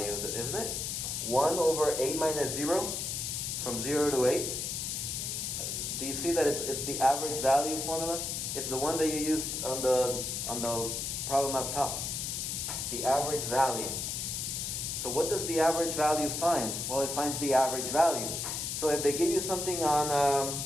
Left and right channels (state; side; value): noise; left; hiss, 3 dB below the sound